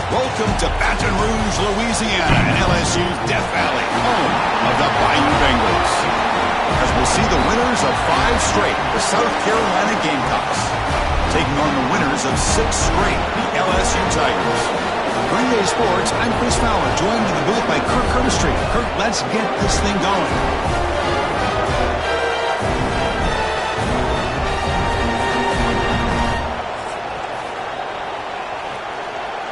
Welcome to Baton Rouge, Louisiana, and LSU's Death Valley, home of the Bayou Bengals. As we'll see the winners of 5 straight, the South Carolina Gamecocks, taking on the winners of 6 straight, the LSU Tigers. Green Bay Sports, I'm Chris Fowler, joined in the booth by Kirk Kermistreet. Kirk, let's get this thing going.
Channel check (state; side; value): identical; both; correlation 1.00